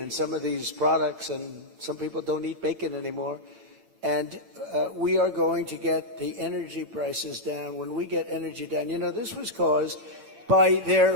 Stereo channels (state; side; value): late; left; 8.8 ms